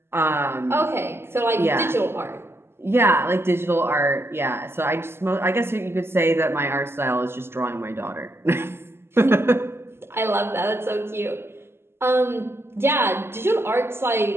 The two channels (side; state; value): left; late; 0.12 ms